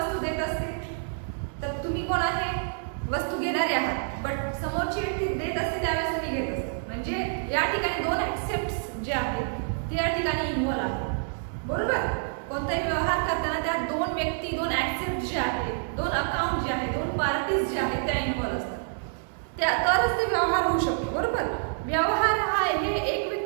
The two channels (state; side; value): silent; left; digital silence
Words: देत असते, तर तुम्ही कोण आहे? वस्तू घेणारे आहात, बट समोरची व्यक्ती देत असते त्यावेळेस तुम्ही घेत असतो. म्हणजे या ठिकाणी दोन ऍक्सेप्ट्स जे आहेत ते या ठिकाणी इन्व्हॉल्व आहेत, बरोबर. कोणताही व्यवहार करताना त्या दोन व्यक्ती, दोन ऍक्सेप्ट जे आहेत, दोन अकाउंट जे आहेत, दोन पार्टीज जे आहेत त्या इन्व्हॉल्व असतात. त्या तरच ते व्यवहार होऊ शकतो, बरोबर. व्यवहार हा हे एक